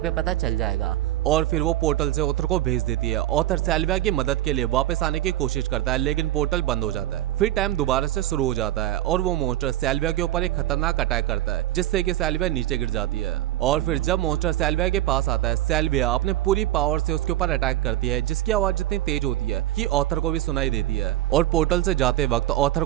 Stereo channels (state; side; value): quieter; left; 14.6 dB